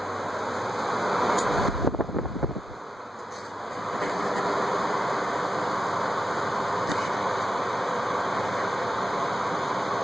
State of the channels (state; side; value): normal; both; correlation 0.90